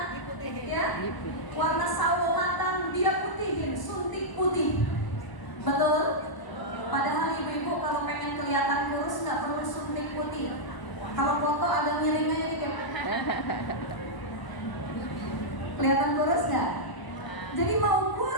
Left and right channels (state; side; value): late; right; 1.0 ms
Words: ya, warna sawo matang, dia putihin, suntik putih. Betul? Padahal ibu-ibu kalau pengen kelihatan kurus nggak perlu suntik putih. Kalau foto agak miring aja dikit. Kelihatan kurus nggak? Jadi mau